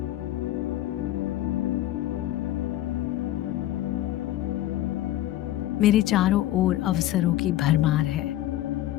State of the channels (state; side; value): quieter; right; 14.2 dB